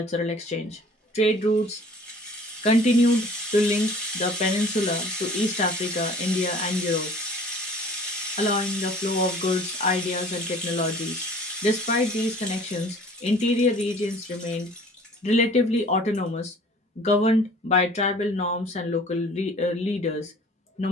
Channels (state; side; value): normal; both; correlation 0.49